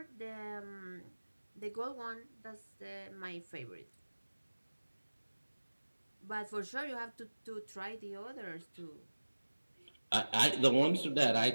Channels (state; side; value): inverted; both; correlation -1.00